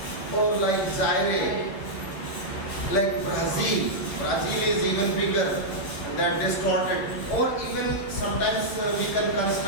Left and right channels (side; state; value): right; late; 10 ms